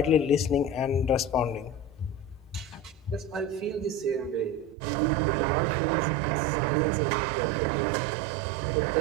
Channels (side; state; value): left; drops out; at 4.8 s